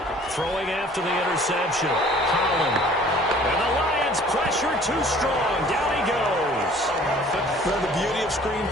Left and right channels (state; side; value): normal; both; correlation 0.52